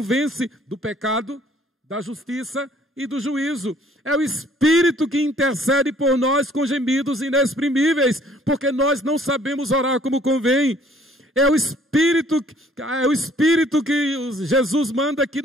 do pecado, da justiça e do juízo. É o Espírito que intercede por nós com gemidos inexprimíveis, porque nós não sabemos orar como convém. É o Espírito que Jesus manda que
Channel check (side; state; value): both; normal; correlation 0.59